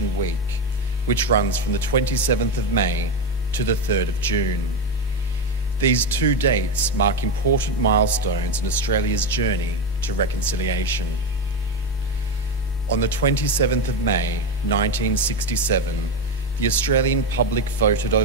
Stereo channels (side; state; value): both; normal; correlation 0.12